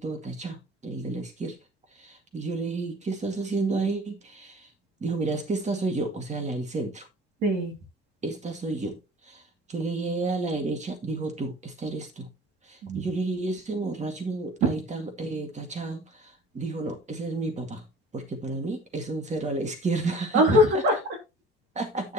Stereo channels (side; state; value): both; normal; correlation 0.46